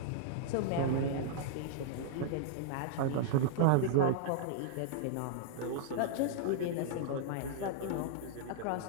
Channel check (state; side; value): different; both; correlation -0.02